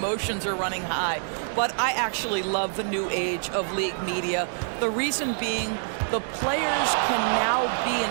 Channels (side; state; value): left; silent; digital silence